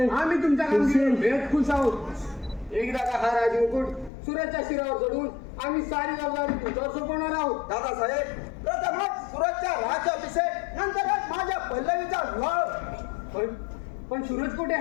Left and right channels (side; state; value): right; drops out; at 4.1 s